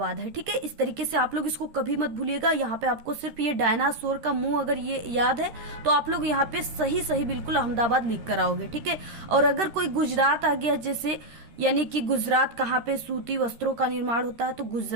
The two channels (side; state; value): left; late; 13 ms